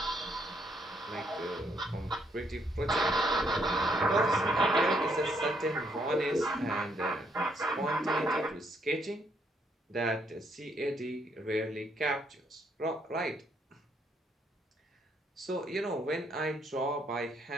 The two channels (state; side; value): normal; both; correlation 0.72